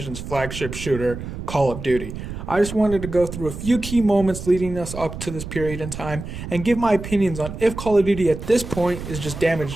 flagship shooter, Call of Duty. I just wanted to go through a few key moments leading us up to this period in time and give my opinions on if Call of Duty at this point is just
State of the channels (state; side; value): noise; right; rumble, 9 dB below the sound